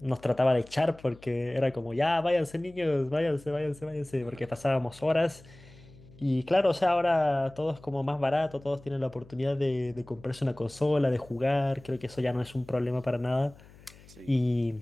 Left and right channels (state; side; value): noise; left; hum, 23 dB below the sound